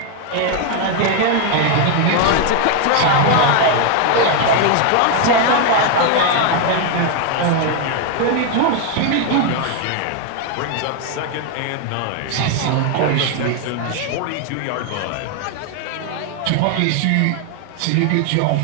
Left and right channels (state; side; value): different; both; correlation 0.00